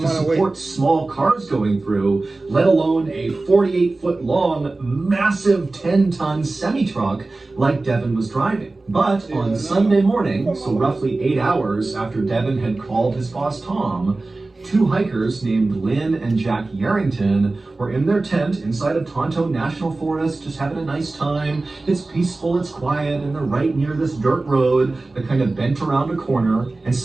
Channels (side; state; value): left; quieter; 3.3 dB